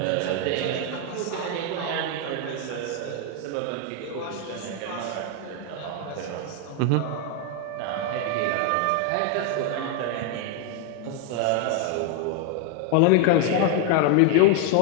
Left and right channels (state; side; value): different; both; correlation 0.00